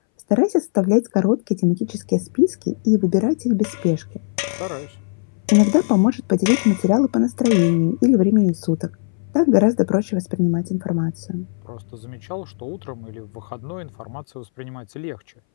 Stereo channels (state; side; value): silent; right; 62 dB below the other